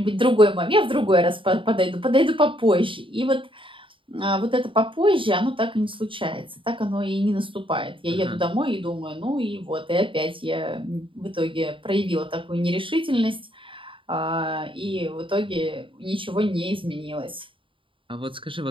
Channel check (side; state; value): left; late; 0.25 ms